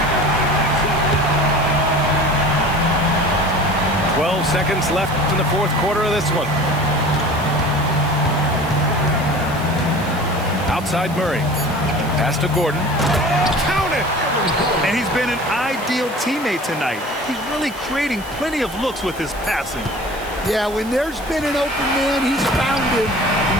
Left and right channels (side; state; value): right; noise; hiss, 18 dB below the sound